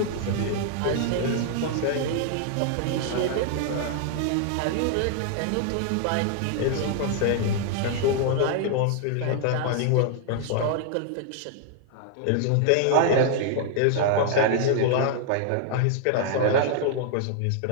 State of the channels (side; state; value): both; different; correlation 0.00